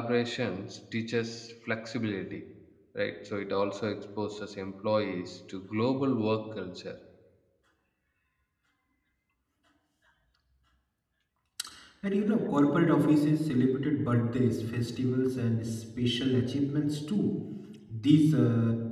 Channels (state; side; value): identical; both; correlation 1.00